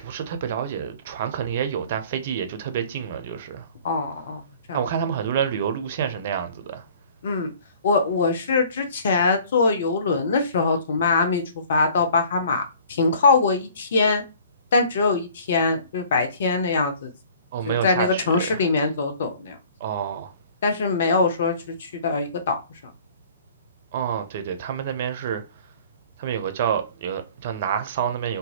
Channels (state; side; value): inverted; both; correlation -0.51